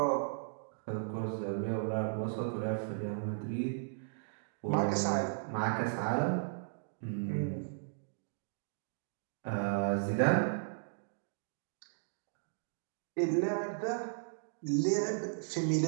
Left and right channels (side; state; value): left; silent; digital silence